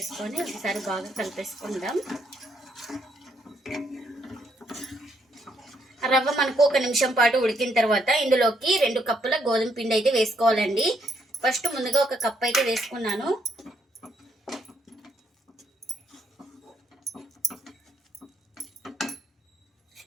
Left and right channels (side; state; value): both; normal; correlation 0.73